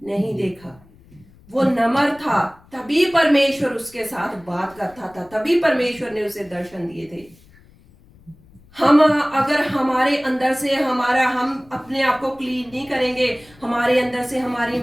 नहीं देखा। वो नम्र था, तभी परमेश्वर उसके साथ बात करता था, तभी परमेश्वर ने उसे दर्शन दिए थे। हम अगर हमारे अंदर से हम अपने आप को क्लीन नहीं करेंगे, हमारे अंदर से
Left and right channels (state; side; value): noise; left; rumble, 27 dB below the sound